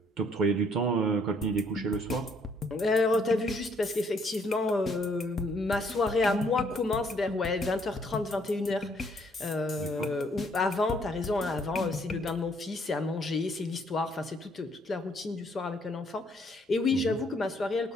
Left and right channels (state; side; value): normal; both; correlation 0.67